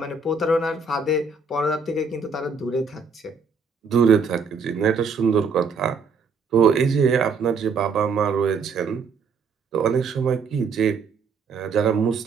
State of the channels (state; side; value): quieter; left; 4.8 dB